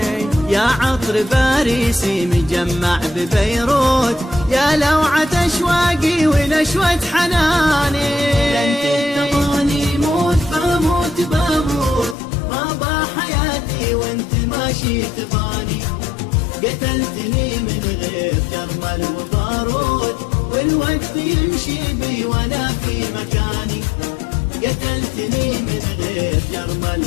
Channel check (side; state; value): right; drops out; at 12.2 s